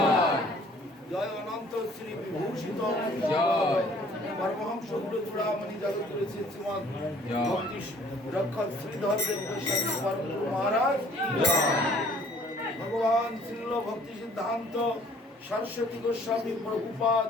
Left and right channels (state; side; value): normal; both; correlation 0.56